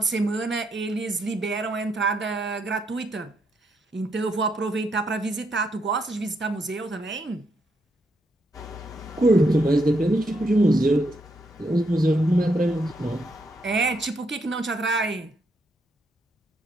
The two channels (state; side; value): normal; both; correlation 0.77